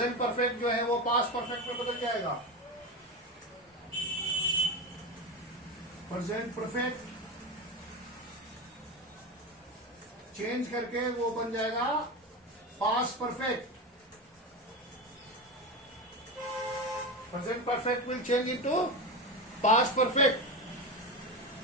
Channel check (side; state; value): both; normal; correlation 0.20